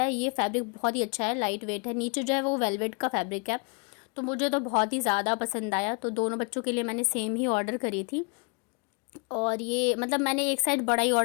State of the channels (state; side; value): quieter; right; 35.3 dB